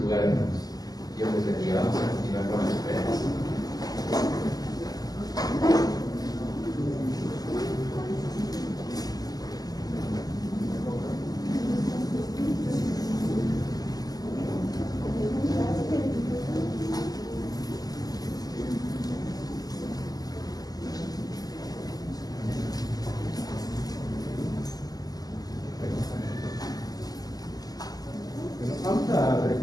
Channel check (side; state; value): right; late; 0.18 ms